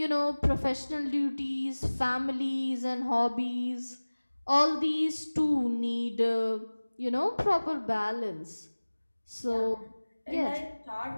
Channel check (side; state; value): both; inverted; correlation -1.00